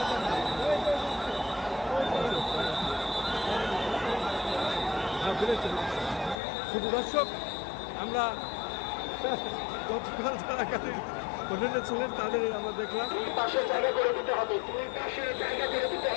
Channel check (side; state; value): right; drops out; at 6.4 s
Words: শুধু দর্শক, আমরা গতকাল যারা গাড়ির হোটেলে ছিলেন তাদের আমরা দেখলাম পাশে জায়গা করে দিতে হবে, দুই পাশে জায়গা করে দিতে